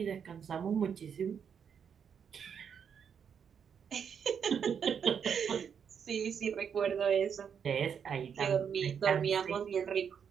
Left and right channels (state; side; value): quieter; left; 7.4 dB